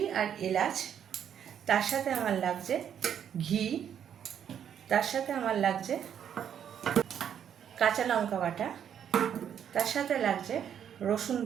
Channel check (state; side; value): quieter; left; 8.9 dB